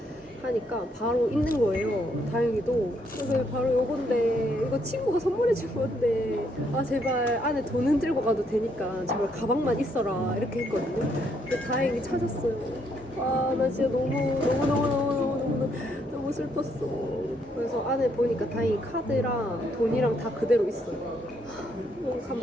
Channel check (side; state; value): both; normal; correlation 0.73